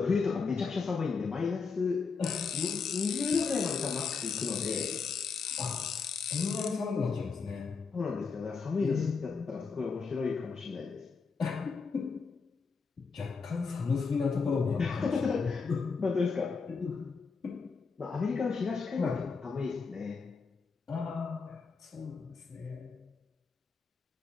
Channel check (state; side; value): quieter; right; 5.0 dB